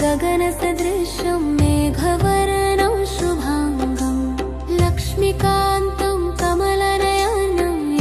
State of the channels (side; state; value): both; identical; correlation 1.00